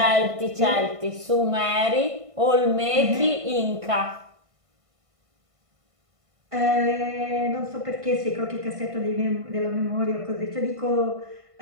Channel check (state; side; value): late; left; 1.5 ms